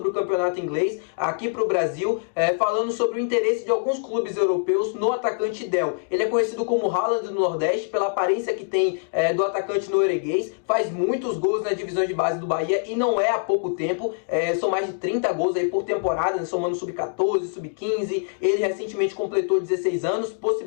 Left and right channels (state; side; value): silent; right; digital silence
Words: o campeonato inglês aqui para o Brasil, falando sobre o interesse de alguns clubes europeus no atacante Del. Ele é conhecido como Haaland do Nordeste pela aparência que tem do atacante norueguês, faz muitos gols na divisão de base do Bahia e não é há pouco tempo, são mais de 30 gols aí por temporada, somando sub-14, sub-15. Ele recentemente completou 16 anos,